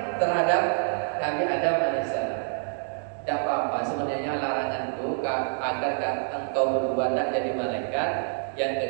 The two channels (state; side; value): silent; left; digital silence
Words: terhadap Nabi Adam alaihissalam. Tidak apa-apa, sebenarnya larangan itu agar engkau berdua tidak jadi malaikat. Yang